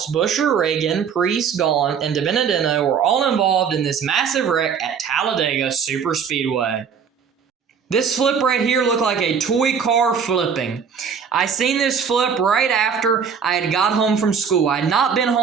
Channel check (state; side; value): quieter; left; 6.7 dB